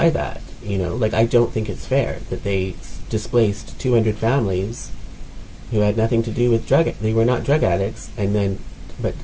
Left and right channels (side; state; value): both; identical; correlation 1.00